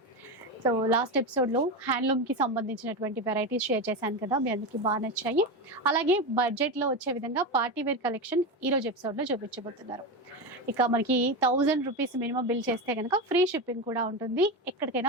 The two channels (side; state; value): both; normal; correlation 0.18